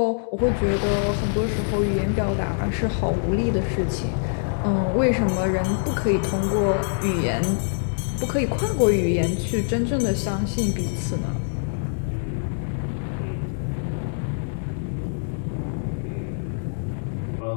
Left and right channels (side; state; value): right; silent; digital silence